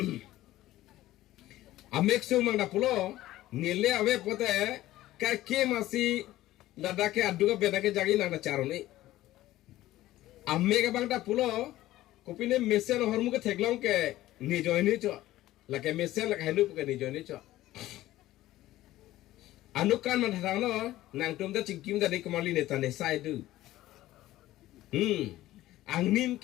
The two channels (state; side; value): quieter; right; 15.5 dB